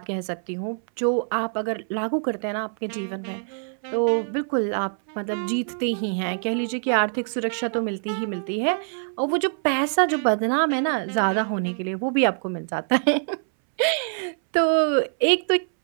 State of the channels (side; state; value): left; silent; 62 dB below the other